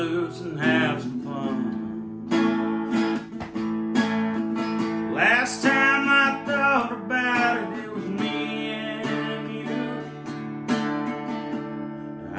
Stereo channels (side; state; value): both; identical; correlation 1.00